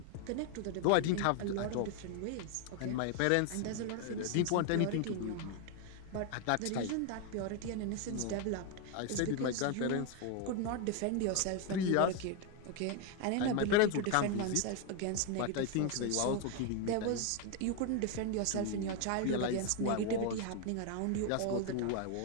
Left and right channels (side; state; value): both; different; correlation 0.01